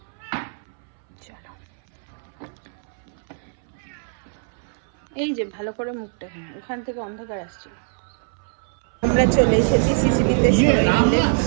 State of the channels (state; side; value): silent; left; 59 dB below the other